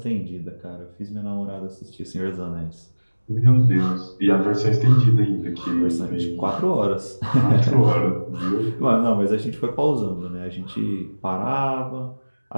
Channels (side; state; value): both; inverted; correlation -1.00